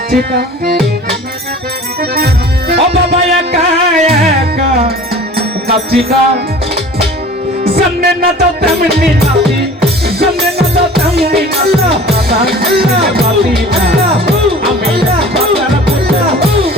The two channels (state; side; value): normal; both; correlation 0.43